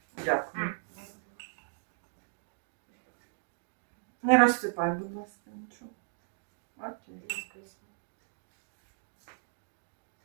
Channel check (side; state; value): left; silent; digital silence